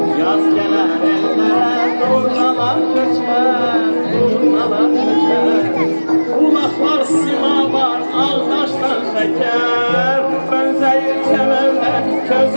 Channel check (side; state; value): both; inverted; correlation -1.00